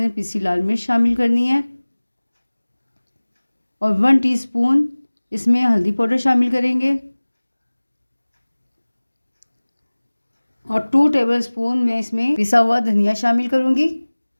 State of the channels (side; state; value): both; inverted; correlation -1.00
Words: पिसी लाल मिर्च शामिल करनी है और 1 टीस्पून इसमें हल्दी पाउडर शामिल करेंगे और 2 टेबलस्पून मैं इसमें पिसा हुआ धनिया शामिल करूँगी